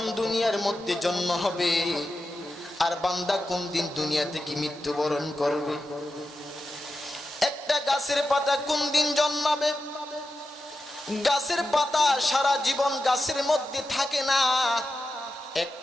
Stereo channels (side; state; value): both; normal; correlation 0.91